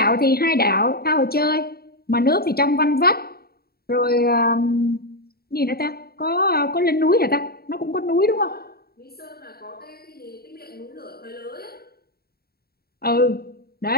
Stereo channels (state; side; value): late; right; 0.45 ms